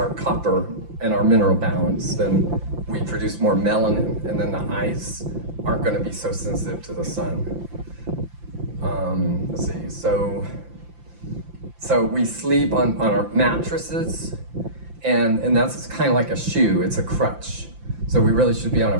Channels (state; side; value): late; left; 5.8 ms